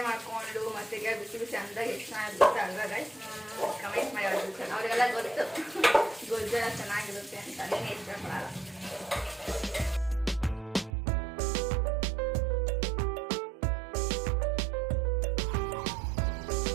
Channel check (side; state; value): left; drops out; at 10.9 s